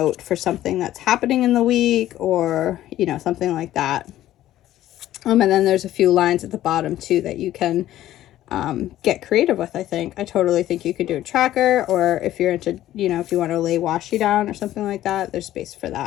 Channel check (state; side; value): quieter; right; 13.6 dB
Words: for something that's happening in the week or, you know, something like that. And then there's a few lines at the bottom too that you can get creative with. I totally think you could do a tracker, or if you're into, you know, if you want to lay washi down or something like that, there's space for